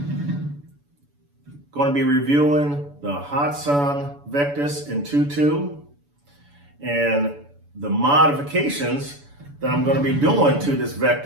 going to be reviewing the Hatsan Vectis in 2.2 and the modifications that I'm going to be doing to this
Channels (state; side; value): late; left; 7.0 ms